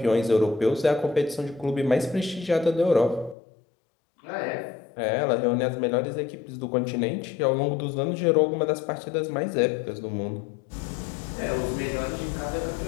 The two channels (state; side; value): drops out; right; at 3.4 s